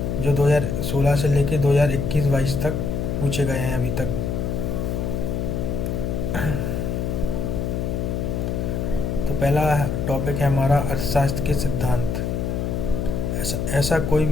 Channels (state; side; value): noise; left; hum, 1 dB below the sound